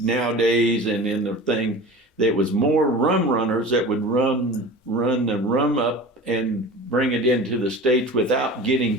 and in the thing. There was more rum runners that would run the rum up and bring it into the States without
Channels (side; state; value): both; normal; correlation 0.35